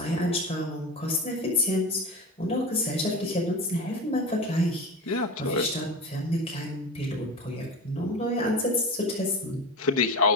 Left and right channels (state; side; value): normal; both; correlation 0.27